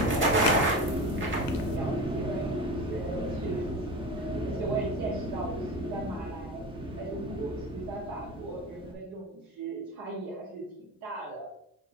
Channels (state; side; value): normal; both; correlation 0.28